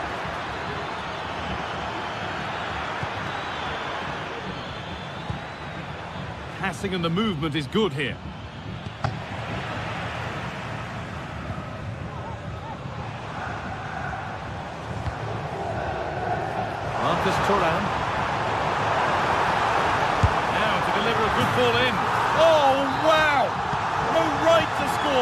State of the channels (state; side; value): identical; both; correlation 1.00